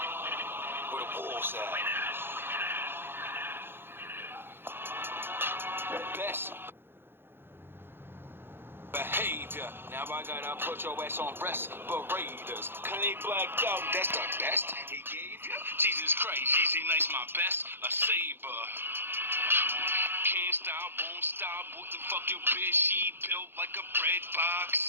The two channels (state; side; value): late; left; 0.10 ms